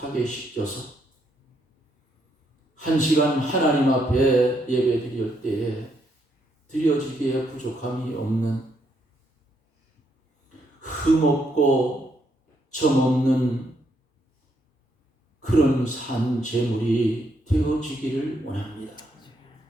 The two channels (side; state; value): both; normal; correlation 0.75